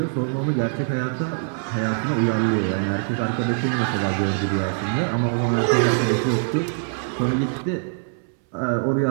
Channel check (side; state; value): left; silent; 63 dB below the other